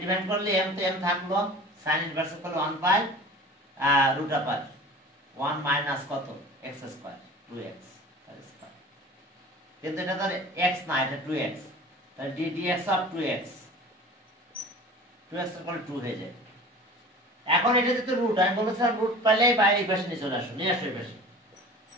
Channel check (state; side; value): normal; both; correlation 0.40